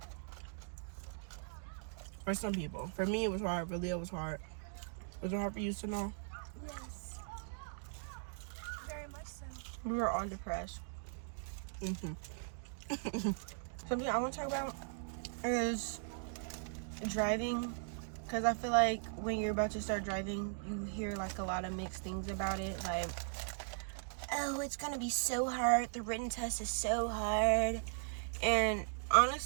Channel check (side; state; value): left; silent; digital silence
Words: For some people. For me, it was hard. For Leah, it was hard. Was it hard for you to know? Yes. Very much so. We were all depressed. Something I want to talk about is driving, because I feel like when you're about to start driving, you hear like a lot of mixed things about it. Like, oh, it's gonna be so hard. The written test is so hard. And